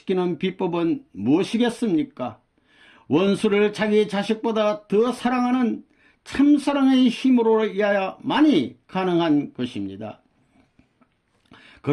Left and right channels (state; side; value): identical; both; correlation 1.00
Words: 비법은 무엇이겠습니까? 원수를 자기 자식보다 더 사랑하는 참사랑의 힘으로야만이 가능한 것입니다.